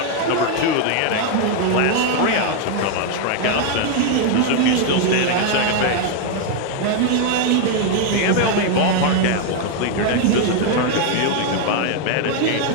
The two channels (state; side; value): different; both; correlation 0.00